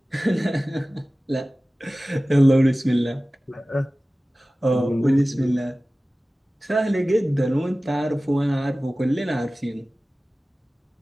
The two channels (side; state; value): both; normal; correlation 0.97